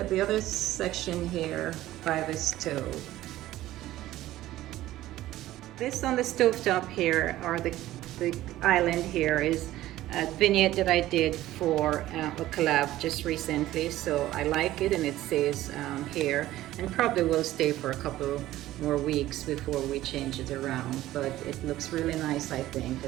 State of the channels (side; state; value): left; quieter; 15.0 dB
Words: the other section here by the stove. This on the stovetop here, or the island here, is a vignette that I did for a collab just recently. So I like it, and it says here, and probably will stay for a couple more weeks before we change it around. But it looks really nice, I think.